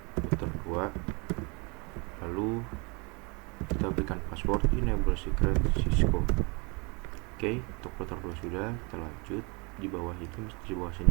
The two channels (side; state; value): left; quieter; 30.4 dB